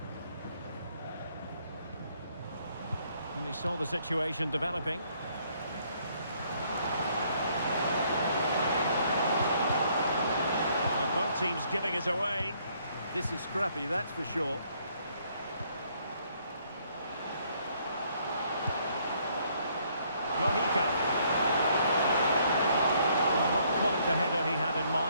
And he saw the situation developing. Both teams giving it away. This is scrappy, that's for sure. Mojica. Well, not quite the header he had in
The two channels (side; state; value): both; inverted; correlation -0.67